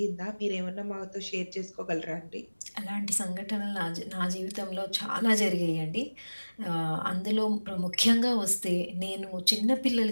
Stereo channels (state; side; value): inverted; both; correlation -1.00